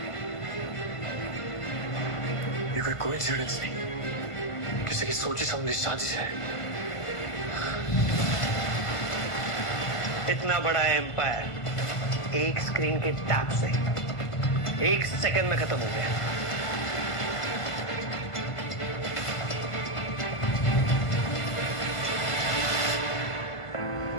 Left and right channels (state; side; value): late; right; 1.5 ms